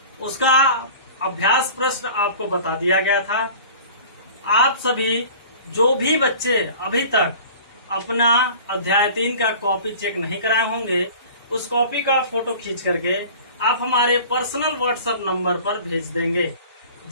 उसका अभ्यास प्रश्न आपको बता दिया गया था। आप सभी जो भी बच्चे अभी तक अपना अध्याय 3 का कॉपी चेक नहीं कराए होंगे, उस कॉपी का फोटो खींच करके आप हमारे पर्सनल व्हाट्सएप नंबर पर भेज देंगे,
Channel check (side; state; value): both; inverted; correlation -0.43